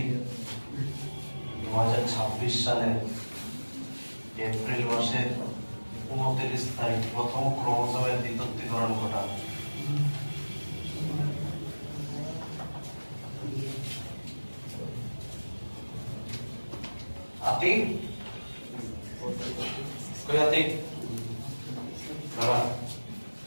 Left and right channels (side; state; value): both; inverted; correlation -1.00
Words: সালের এপ্রিল মাসের 29 তারিখ প্রথম ক্রোমোজোমের দ্বিতীয়করণ ঘটায়। আতিক কই আতিক বাবা